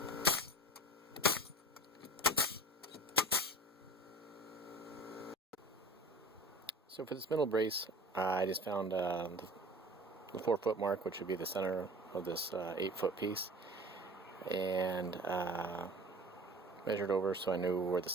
So for this middle brace, I just found the 4-foot mark, which would be the center of this 8-foot piece, and measured over so I knew where the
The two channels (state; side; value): normal; both; correlation 0.40